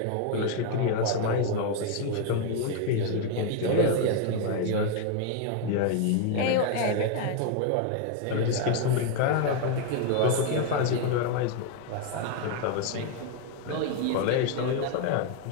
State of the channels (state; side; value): different; both; correlation 0.01